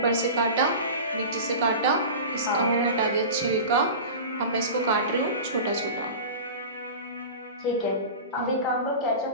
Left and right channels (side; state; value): both; inverted; correlation -0.32